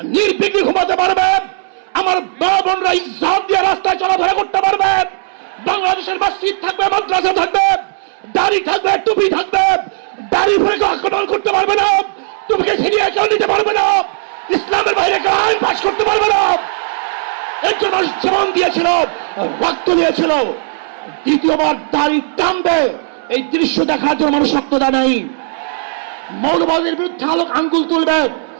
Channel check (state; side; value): silent; left; digital silence